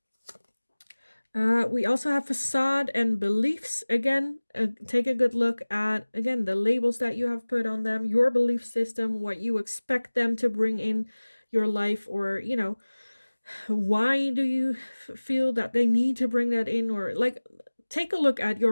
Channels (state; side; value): inverted; both; correlation -1.00